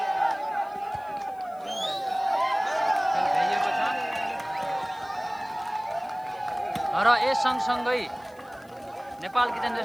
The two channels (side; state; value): left; noise; hiss, 29 dB below the sound